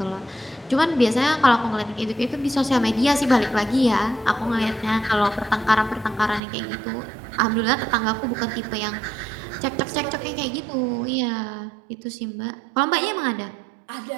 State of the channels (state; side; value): drops out; left; at 6.4 s